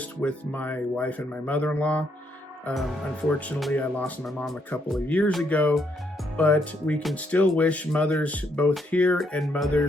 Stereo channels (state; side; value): normal; both; correlation 0.74